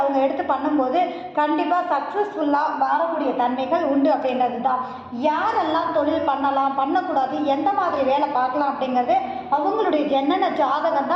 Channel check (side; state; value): both; identical; correlation 1.00